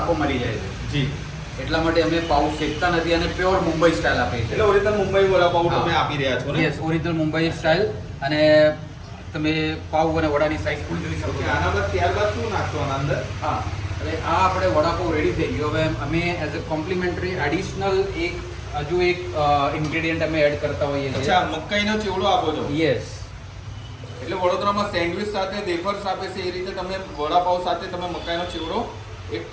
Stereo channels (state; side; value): identical; both; correlation 1.00